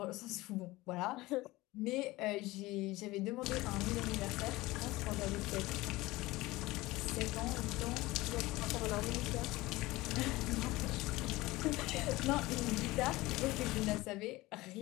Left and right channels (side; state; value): right; quieter; 19.7 dB